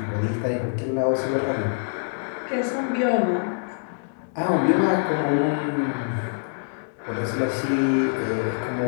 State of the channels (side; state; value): right; silent; digital silence